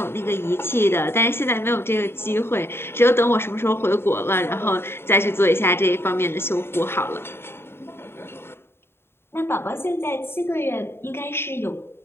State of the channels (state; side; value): late; right; 0.11 ms